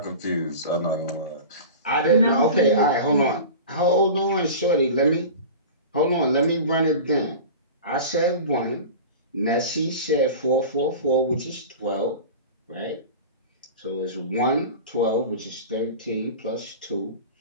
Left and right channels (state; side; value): inverted; both; correlation -0.33